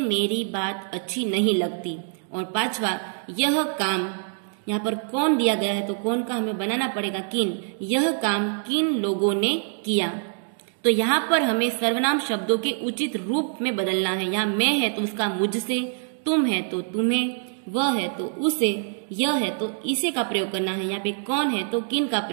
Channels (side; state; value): left; silent; 62 dB below the other